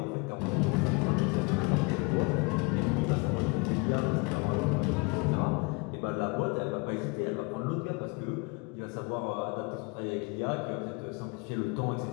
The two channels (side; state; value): right; quieter; 29.1 dB